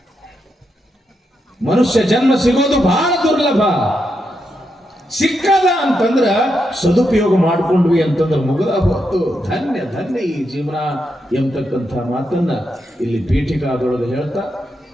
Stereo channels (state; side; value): normal; both; correlation 0.83